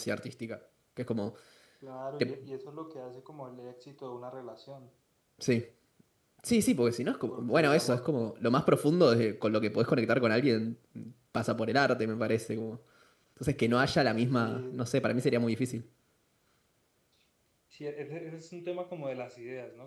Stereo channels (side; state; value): both; identical; correlation 1.00